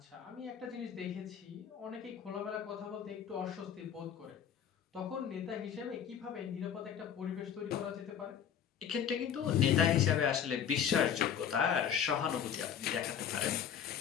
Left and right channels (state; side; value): quieter; right; 8.5 dB